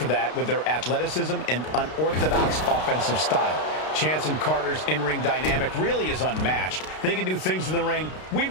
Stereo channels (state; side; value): late; right; 32 ms